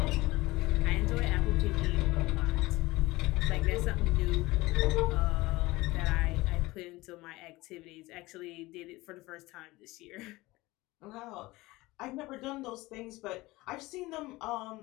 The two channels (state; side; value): quieter; right; 20.2 dB